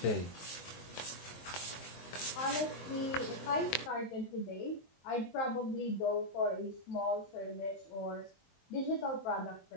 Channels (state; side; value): late; right; 22 ms